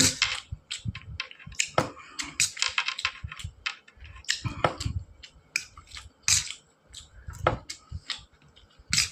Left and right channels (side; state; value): both; identical; correlation 1.00